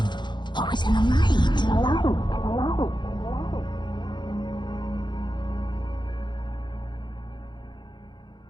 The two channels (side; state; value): right; late; 0.22 ms